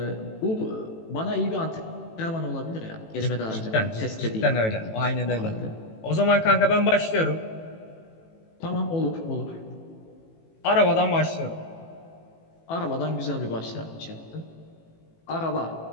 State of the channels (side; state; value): right; late; 18 ms